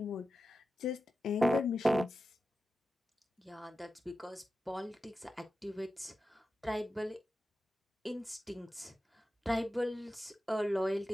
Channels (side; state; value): both; normal; correlation 0.92